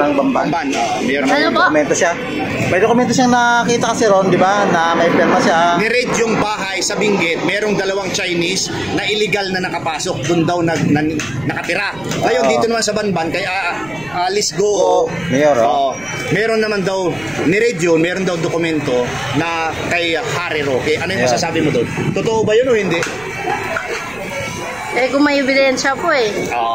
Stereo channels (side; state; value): right; noise; rumble, 22 dB below the sound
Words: Bamban. Mayor ng Ano po? Dokumento siya. May dokumento siyang nakita kasi ron, di ba, na may pirma siya. Ni-raid yung bahay sa Benguet, merong dalawang Chinese na illegal na nakapasok, doon daw nakatira. Ngayon dito naman sa Banban kay Alice Goo, mayor. Meron naman daw ni-raid yun, meron daw dokumento na kay Harry Roque. Ano yung masasabi mo doon? Totoo ba yun o hindi? Kung may ebidensya po